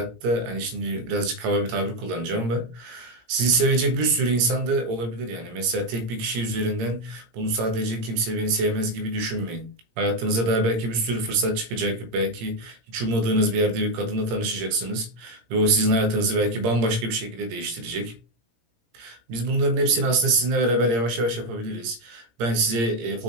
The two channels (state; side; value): late; left; 17 ms